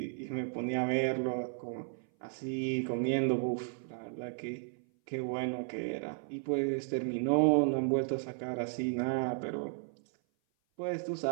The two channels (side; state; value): left; silent; 55 dB below the other